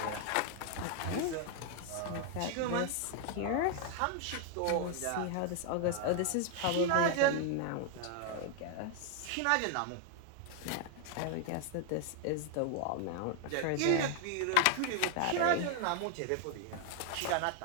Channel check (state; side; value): different; both; correlation 0.00